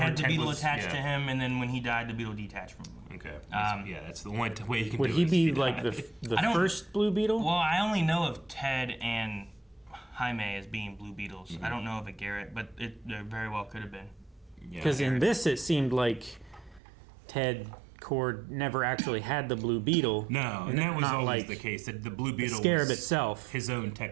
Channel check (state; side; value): drops out; left; at 16.8 s